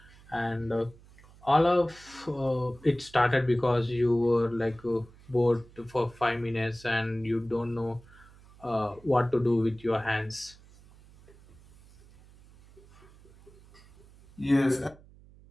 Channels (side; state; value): right; noise; hum, 24 dB below the sound